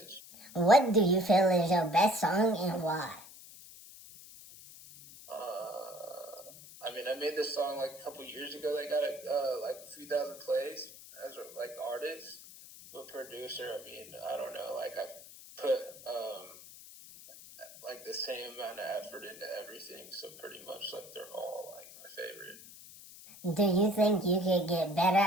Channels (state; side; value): noise; left; hiss, 17 dB below the sound